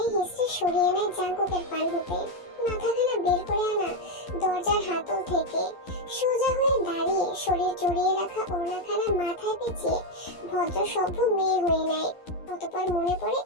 হিসড়ে সরিয়ে নেয় জাংকুকের পান হতে। মাথাখানা বের করে আনা দরজার হাতল থেকে সোজা হয়ে দাঁড়িয়ে শরীর জড়িয়ে রাখা ওড়নাখানা মাথায় পেঁচিয়ে ভদ্র সভ্য মেয়ে হয়ে নেয়। অতঃপর মনে পড়ে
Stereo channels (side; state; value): right; late; 11 ms